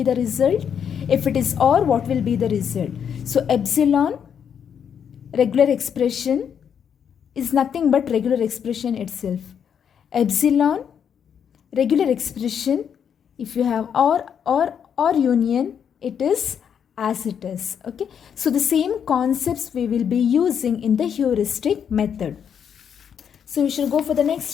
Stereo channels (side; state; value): right; quieter; 7.9 dB